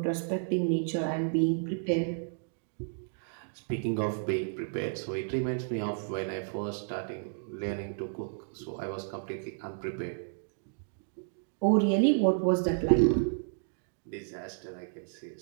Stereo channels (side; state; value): left; silent; digital silence